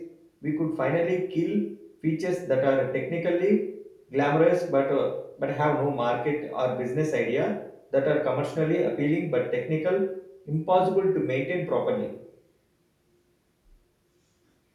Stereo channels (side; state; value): both; identical; correlation 1.00